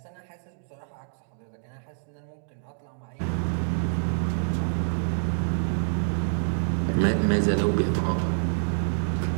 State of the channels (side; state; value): left; silent; digital silence